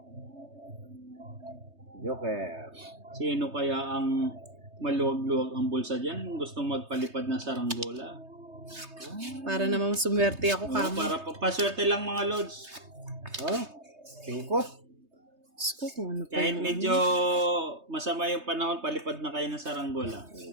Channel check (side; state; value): left; late; 3.2 ms